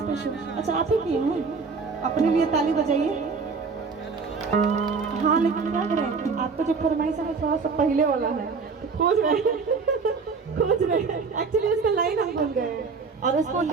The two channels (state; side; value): quieter; left; 4.9 dB